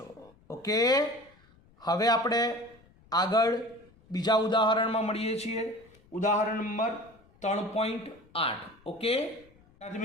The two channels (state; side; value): noise; left; rumble, 29 dB below the sound